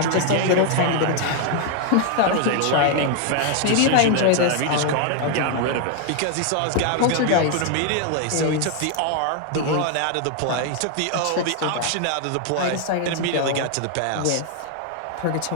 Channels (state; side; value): different; both; correlation 0.00